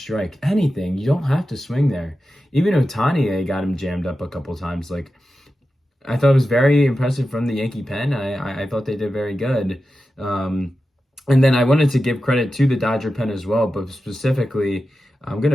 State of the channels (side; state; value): both; normal; correlation 0.92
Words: Anything. You don't have to swing there. Even Ohtani, they got him jammed up a couple times. Like, I thought it was very impressive from the Yankee pen. I thought they did very good. And then I wanted to give credit to the Dodger pen as well, but specifically, I'm going to